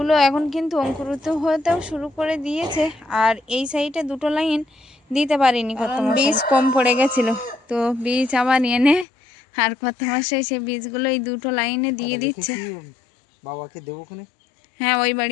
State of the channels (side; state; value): right; drops out; at 9.1 s